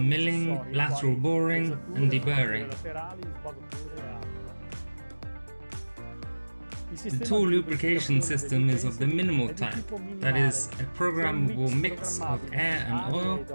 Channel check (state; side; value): inverted; both; correlation -1.00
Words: lateral boring and deburring. The tool lubrication system is of the minimal type, that is, a programmable mix of air and oil